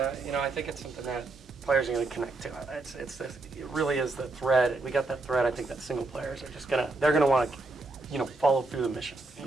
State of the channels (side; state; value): left; quieter; 3.1 dB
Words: think it's something that players are going to connect to. It really is the thread. We got that thread. I think that single players are just they're gonna want to, follow through the mission. I